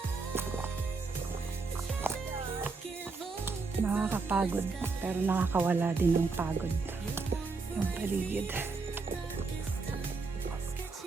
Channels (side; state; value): left; quieter; 4.2 dB